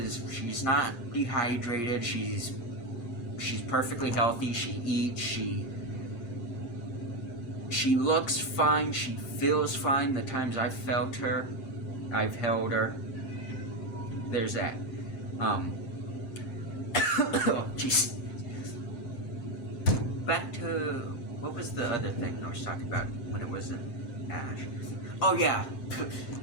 she's not dehydrated. She's perfectly healthy. She eats. She looks fine. She feels fine. The times I've held her. There's that. Oh, jeez. Back to, what was the other thing I was talking about when it wasn't Ash? Oh yeah,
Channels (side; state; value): right; late; 7.5 ms